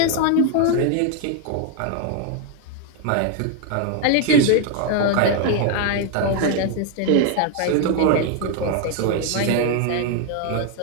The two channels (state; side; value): different; both; correlation 0.01